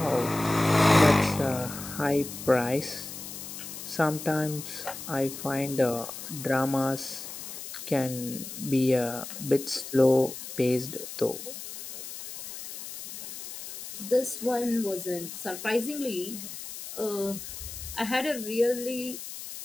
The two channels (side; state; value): left; noise; hiss, 10 dB below the sound